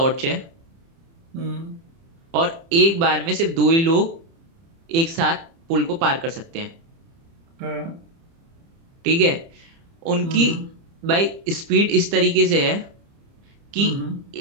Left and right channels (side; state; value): left; late; 30 ms